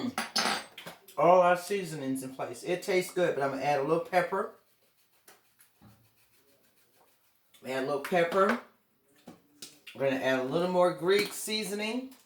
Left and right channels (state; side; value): identical; both; correlation 1.00